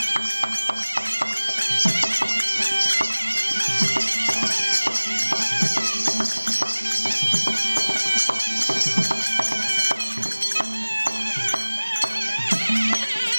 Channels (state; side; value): inverted; both; correlation -1.00